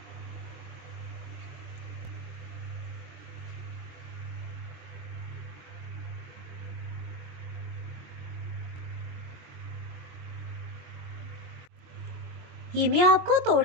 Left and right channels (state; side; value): late; left; 22 ms